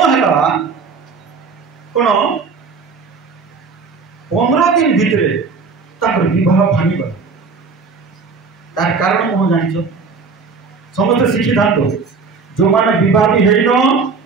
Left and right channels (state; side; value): quieter; left; 4.8 dB